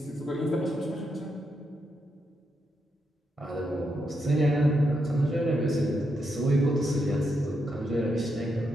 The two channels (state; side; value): normal; both; correlation 0.82